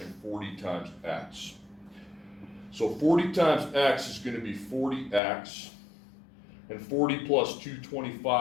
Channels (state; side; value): drops out; right; at 5.2 s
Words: and 40 times x. So 40 times x is going to be 40x, and 40 plus